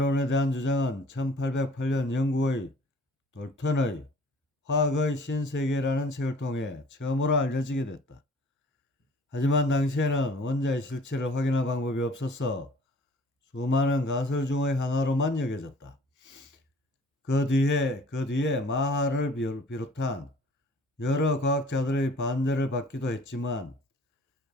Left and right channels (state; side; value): normal; both; correlation 0.51